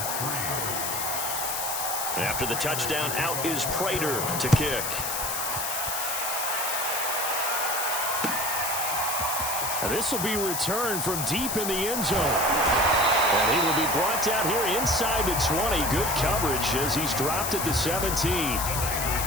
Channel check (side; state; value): left; noise; hiss, 2 dB below the sound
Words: After the touchdown, out is Prater to kick. And this will be returned from deep in the end zone. And he will be brought down here inside the 20. Good coverage as he's dropped at the 17.